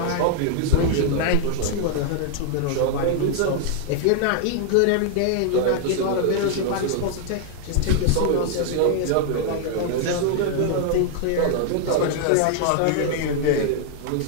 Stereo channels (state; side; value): different; both; correlation 0.00